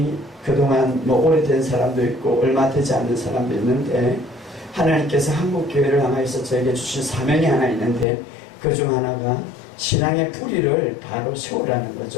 그동안 뭐 오래된 사람도 있고 얼마 되지 않는 사람도 있는데 하나님께서 한국교회를 향하여서 저에게 주신 사명이 하나 있는데 그 중 하나가 신앙의 뿌리를 바로 세우라는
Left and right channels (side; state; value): right; drops out; at 8.1 s